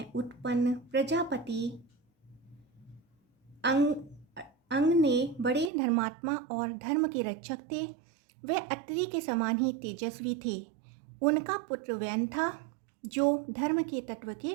उत्पन्न प्रजापति अंग ने बड़े धर्मात्मा और धर्म के रक्षक थे। वे अत्रि के समान ही तेजस्वी थे। उनका पुत्र वैन था, जो धर्म के तत्व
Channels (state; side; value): drops out; left; at 5.7 s